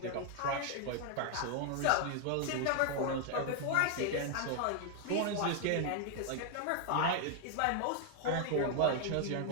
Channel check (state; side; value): different; both; correlation 0.00